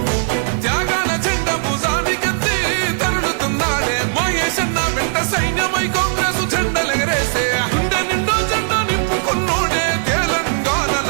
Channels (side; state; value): left; silent; 63 dB below the other